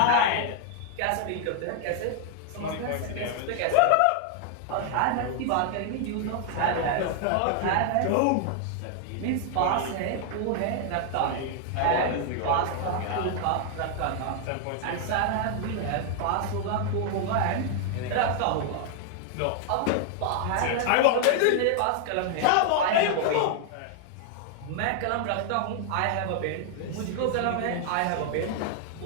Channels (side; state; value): both; different; correlation 0.00